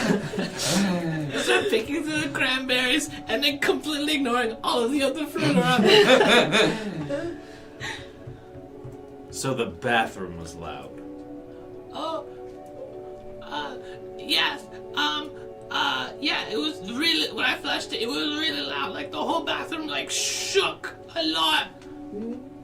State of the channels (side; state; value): both; identical; correlation 1.00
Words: I start picking through the cranberries and then completely ignoring all of the other fruit around me. So the bathroom was loud. Oh, yes. Yeah, it was really, when I flushed it, it was really loud. Like the whole bathroom like shook a lot.